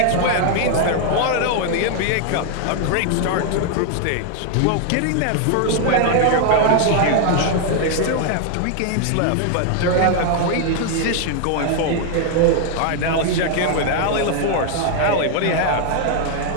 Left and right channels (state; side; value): different; both; correlation 0.00